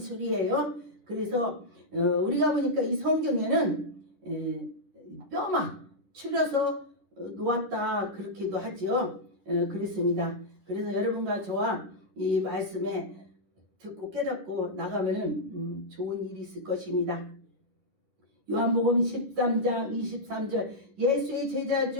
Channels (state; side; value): late; left; 10 ms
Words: 그래서 우리가 보니까 이 성경에는 뼈만 추려서 놓았다 그렇게도 하죠. 그렇습니다. 그래서 여러분과 저와 이 말씀에 듣고 깨닫고 나가면은 좋은 일이 있을 것입니다. 요한복음 13장 23절 예수의 제자